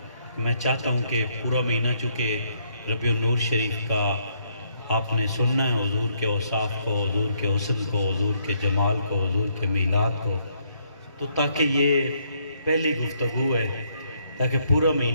میں چاہتا ہوں کہ پورا مہینہ چونکہ ربیع النور شریف کا آپ نے سننا ہے، حضور کے اوصاف کو، حضور کے حسن کو، حضور کے جمال کو، حضور کے میلاد کو، تو تاکہ یہ پہلی گفتگو ہے تاکہ پورا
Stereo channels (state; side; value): inverted; both; correlation -0.72